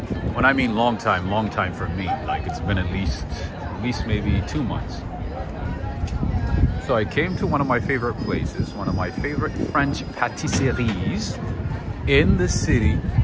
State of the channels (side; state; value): both; identical; correlation 1.00